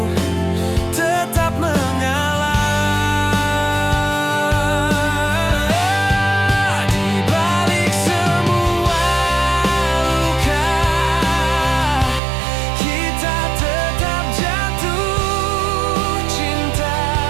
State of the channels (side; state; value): left; drops out; at 12.2 s